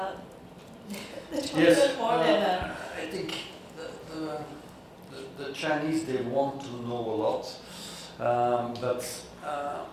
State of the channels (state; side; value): identical; both; correlation 1.00